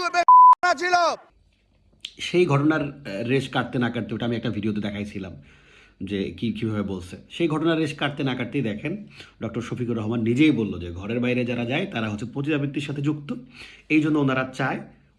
ছিল, সেই ঘটনার রেশ কাটতে না কাটতে, ওটা আমি একটা ভিডিওতে দেখাইছিলাম যে কীভাবে বলছে, সেই ঘটনার রেশ কাটতে না কাটতেই দেখেন ডক্টর শফিকুর রহমান নিজেই বলল যে ঘরের বাইরে যারা যায় তারা হচ্ছে পতিতাবৃত্তির সাথে যুক্ত। এই জন্য ওনারা চায়,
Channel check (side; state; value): both; identical; correlation 1.00